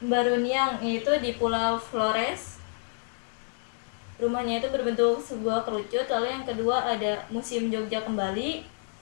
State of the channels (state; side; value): silent; right; 59 dB below the other